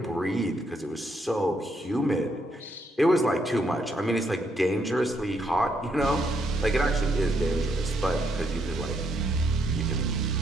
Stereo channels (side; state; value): both; normal; correlation 0.75